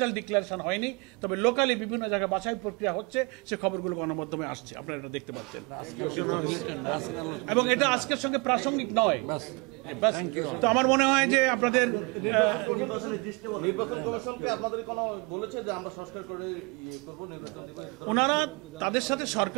ডিক্লারেশন হয়নি, তবে লোকালি বিভিন্ন জায়গায় বাছাই প্রক্রিয়া হচ্ছে, সে খবরগুলো গণমাধ্যমে আসছে, আপনারা এটা দেখতে পাচ্ছেন। এবং এটা আজকের সঙ্গে প্রাসঙ্গিক নয়। তো আমার মনে হয় যে আপনাদের ওনারা তাদের সাথে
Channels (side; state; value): left; quieter; 29.6 dB